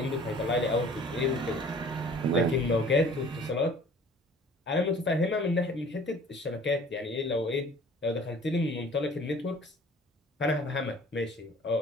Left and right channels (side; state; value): both; normal; correlation 0.50